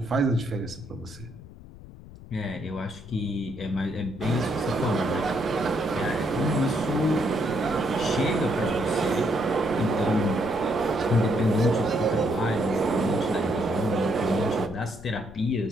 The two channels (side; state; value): left; noise; rumble, 17 dB below the sound